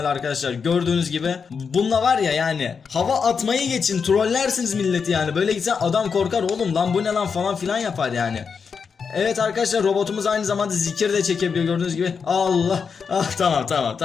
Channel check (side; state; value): right; quieter; 5.9 dB